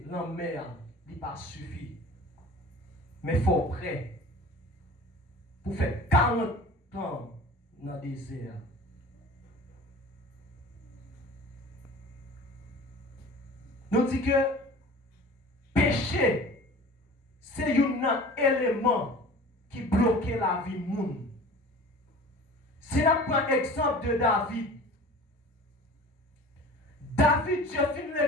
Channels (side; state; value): both; normal; correlation 0.41